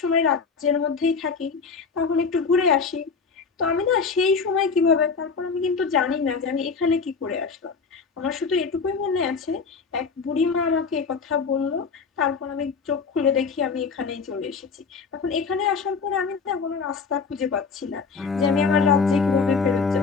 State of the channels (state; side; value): quieter; right; 5.2 dB